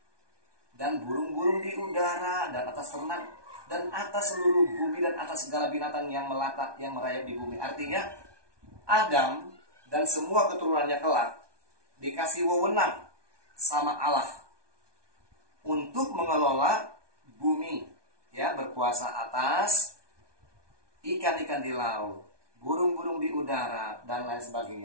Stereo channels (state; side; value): late; left; 1.2 ms